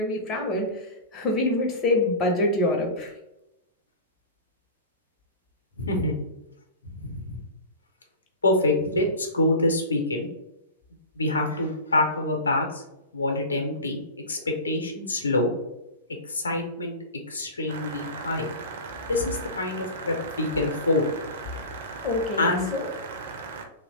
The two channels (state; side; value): inverted; both; correlation -0.32